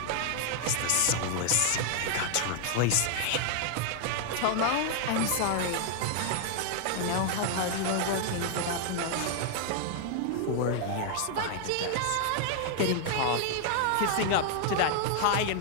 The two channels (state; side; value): different; both; correlation 0.00